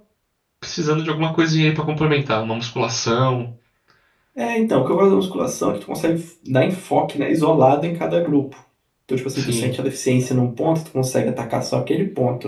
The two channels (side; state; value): both; identical; correlation 1.00